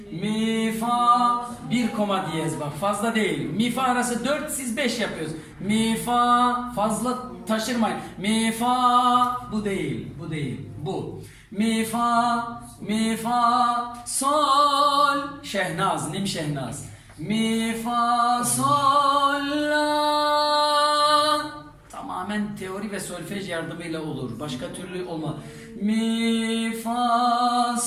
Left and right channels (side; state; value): both; identical; correlation 1.00